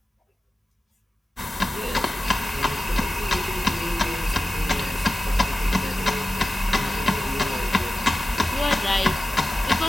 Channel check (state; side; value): normal; both; correlation 0.94